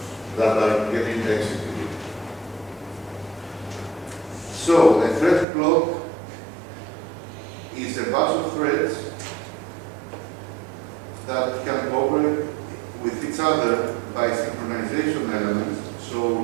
that are getting executed. So, a thread block is a bunch of threads that can cooperate with each other by synchronization elements,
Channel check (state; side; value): drops out; left; at 5.5 s